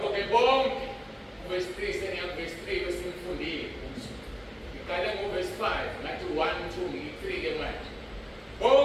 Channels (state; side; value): identical; both; correlation 1.00